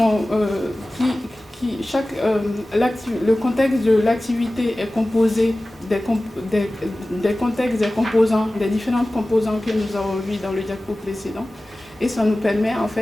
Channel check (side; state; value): both; normal; correlation 0.97